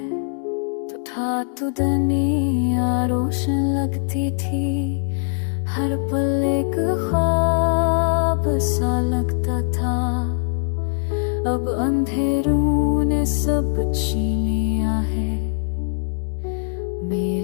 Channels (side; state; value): right; silent; 63 dB below the other